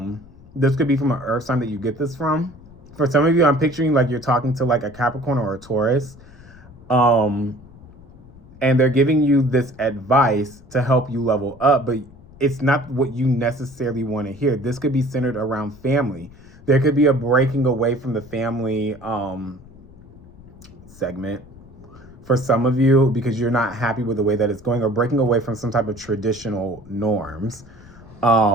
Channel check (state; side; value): noise; left; rumble, 22 dB below the sound